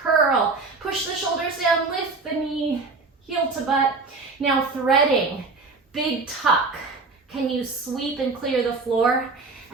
curl. Push the shoulders down, lift the knee, heel to butt. Now threading, big tuck. Can you sweep and clear the floor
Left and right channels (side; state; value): left; quieter; 3.9 dB